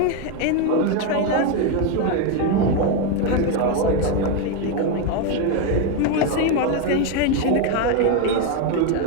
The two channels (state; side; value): different; both; correlation 0.02